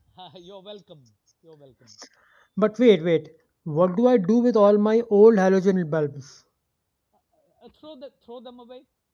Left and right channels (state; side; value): identical; both; correlation 1.00